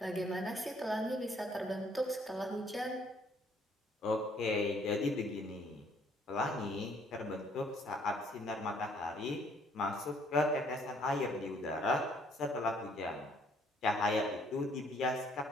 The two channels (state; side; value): normal; both; correlation 0.63